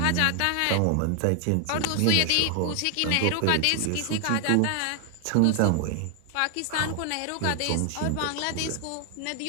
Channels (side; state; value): both; different; correlation 0.00